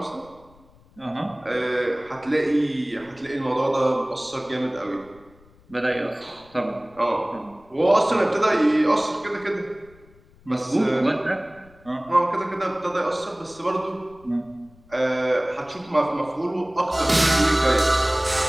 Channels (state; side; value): noise; left; rumble, 27 dB below the sound